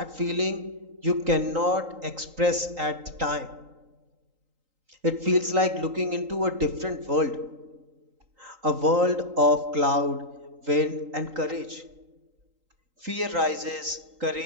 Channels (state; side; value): late; left; 3.8 ms